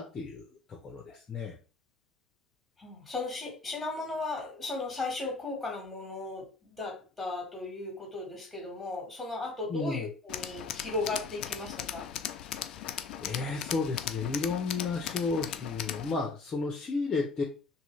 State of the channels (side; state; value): right; quieter; 4.0 dB